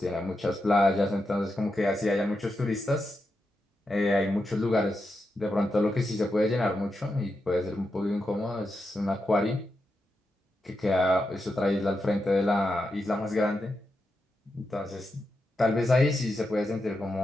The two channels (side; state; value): both; normal; correlation 0.87